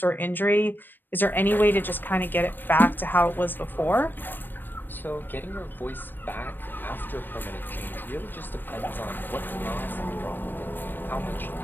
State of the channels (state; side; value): late; right; 0.093 ms